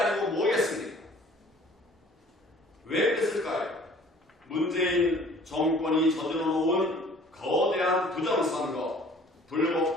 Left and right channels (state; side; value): normal; both; correlation 0.52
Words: 뭐겠습니까? 왜 그랬을까요? 문재인 정권이 저질러 놓은 거대한 부정선거,